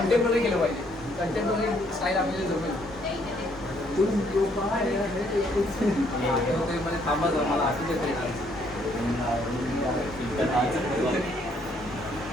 केलं पाहिजे. कंटेम्पररी स्टाईल आपल्याला जमेल. मध्ये थांबा जाऊ, मला असं देत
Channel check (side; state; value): both; normal; correlation 0.68